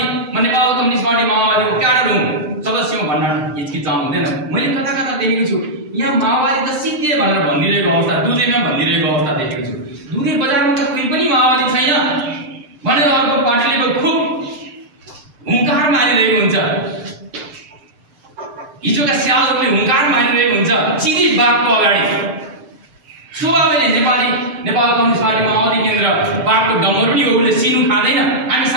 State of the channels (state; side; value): late; left; 7.7 ms